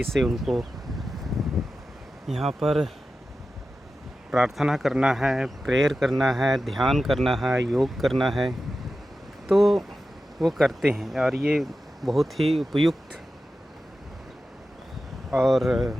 से उनको यहाँ पर प्रार्थना करना है, प्रेयर करना है, ध्यान करना है, योग करना है, तो वो करते हैं। और ये बहुत ही उपयुक्त और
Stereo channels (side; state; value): both; normal; correlation 0.93